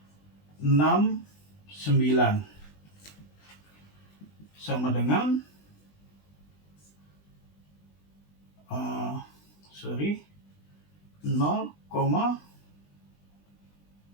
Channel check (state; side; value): late; right; 20 ms